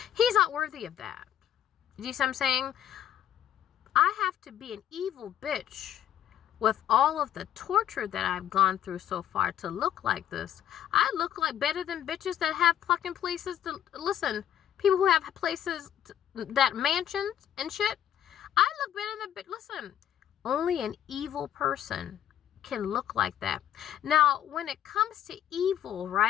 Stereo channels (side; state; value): right; quieter; 10.7 dB